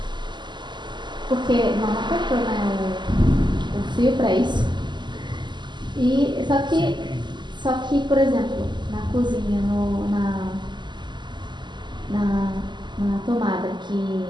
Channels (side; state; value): left; late; 0.22 ms